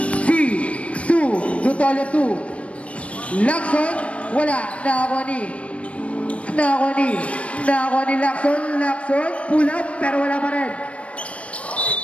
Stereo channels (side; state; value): right; late; 0.063 ms